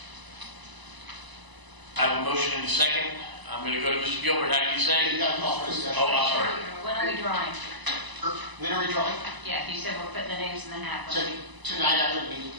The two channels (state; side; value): late; left; 1.0 ms